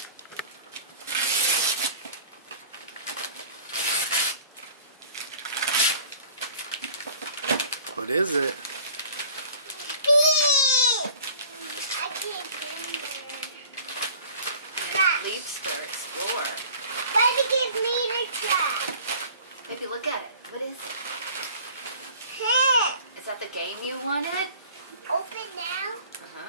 What is it? I can't get in Leapster Explorer. Why did it give me the track? Maybe look at it. What is it? Hey, Is that the game you wanted? open now.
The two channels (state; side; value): inverted; both; correlation -0.47